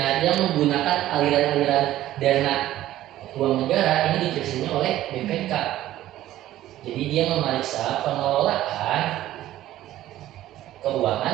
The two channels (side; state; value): left; quieter; 14.0 dB